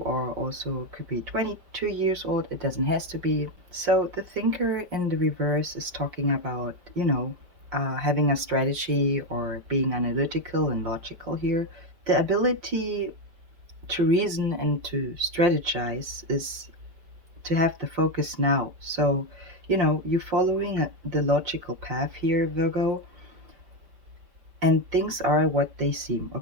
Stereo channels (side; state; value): left; late; 5.1 ms